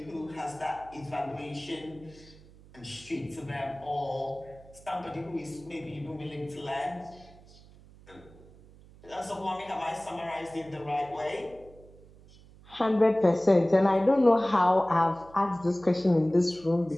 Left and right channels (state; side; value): noise; right; hum, 23 dB below the sound